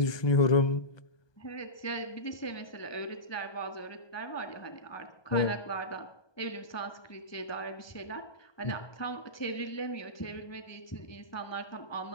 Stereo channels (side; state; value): right; late; 1.2 ms